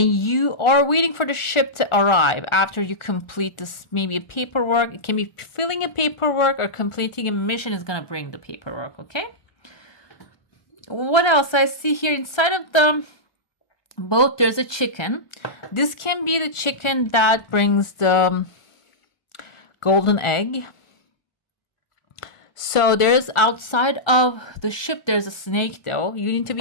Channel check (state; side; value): late; right; 1.4 ms